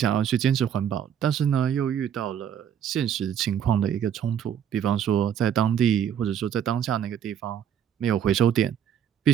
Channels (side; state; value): left; quieter; 9.0 dB